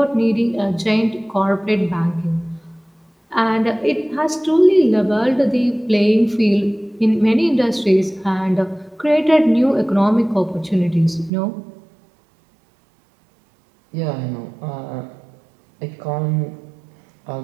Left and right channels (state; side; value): drops out; left; at 11.3 s